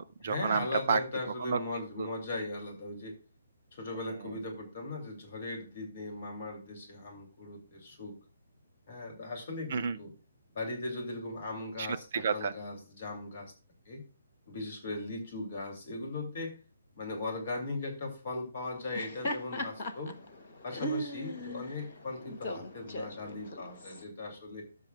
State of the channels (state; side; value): inverted; both; correlation -0.68